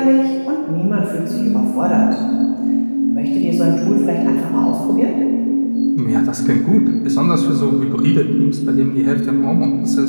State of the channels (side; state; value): both; inverted; correlation -1.00